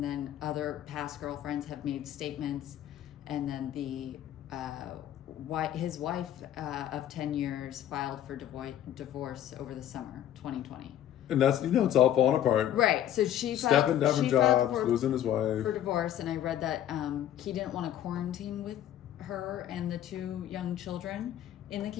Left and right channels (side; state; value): right; quieter; 11.2 dB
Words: then other past girlfriends have made statements. And then the his wife of 10 years filed for divorce over the summer 2020. And that's, it's all falling apart. Right. So she stepping down from jobs, losing his wife. For divorce. And I read that he didn't want to quarantine with her and the 2 young children in the